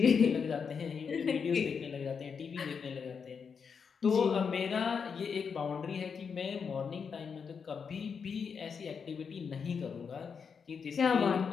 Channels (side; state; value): right; quieter; 6.2 dB